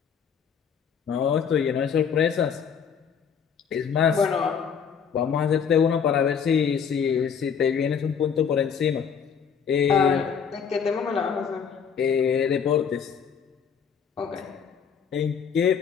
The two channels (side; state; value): right; quieter; 7.1 dB